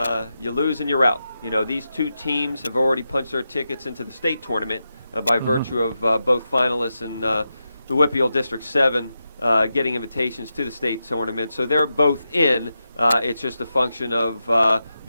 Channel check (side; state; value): both; inverted; correlation -0.88